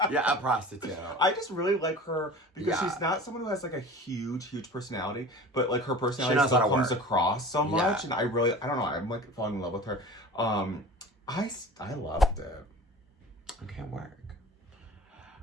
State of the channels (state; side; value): normal; both; correlation 0.39